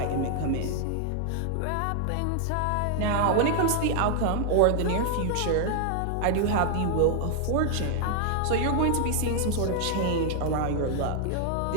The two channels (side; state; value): both; different; correlation 0.00